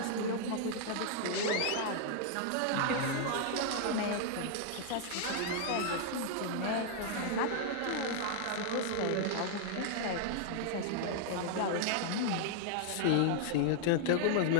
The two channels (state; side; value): different; both; correlation -0.01